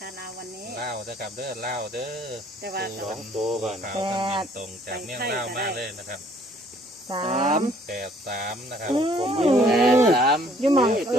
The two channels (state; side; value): normal; both; correlation 0.60